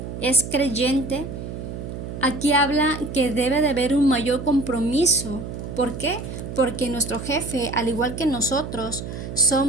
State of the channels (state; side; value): noise; right; hum, 8 dB below the sound